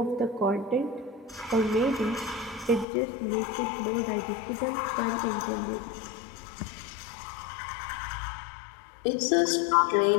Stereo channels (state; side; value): drops out; right; at 2.9 s